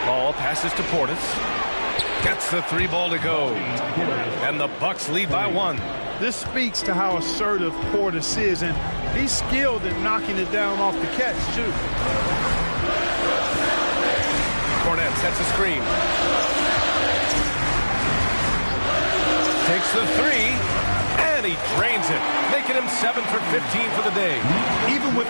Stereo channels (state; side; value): inverted; both; correlation -1.00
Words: Paul passes to Portis. Gets the 3 ball to go. And the Bucks lead by 1. This speaks to how assertive Portis is, and he's skilled at knocking it down off the catch, too. Cornet sets a screen. Takes the 3, and he drains it, making him 7 for 15 for the day. Even with